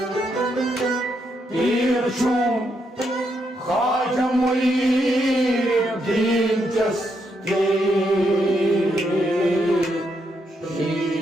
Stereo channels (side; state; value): both; normal; correlation 0.79